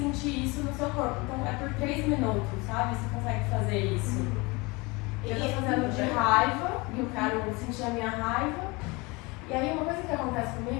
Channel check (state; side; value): quieter; right; 25.5 dB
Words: isso no seu corpo. Então é por 3 minutos, sabe? Você consegue fazer isso. Eu tô fazendo de raiva, e eu quero sentir a minha raiva. E aí uma coisa que acontece